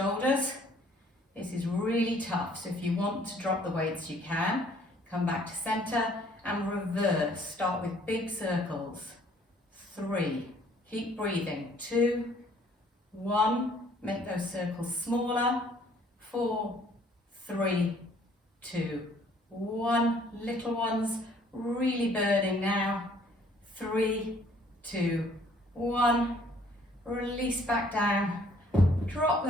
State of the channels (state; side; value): normal; both; correlation 0.60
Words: This is really tough, so if you want to drop the weights, you can. Come back to center and reverse. Start with big circles. 3, keep breathing. 2, 1, make those circles smaller. 4, 3, 2, 1, little ones, really burning now. 3, 2, 1, release back down, drop